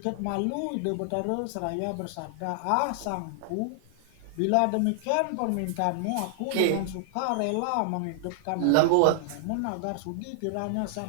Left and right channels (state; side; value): different; both; correlation -0.01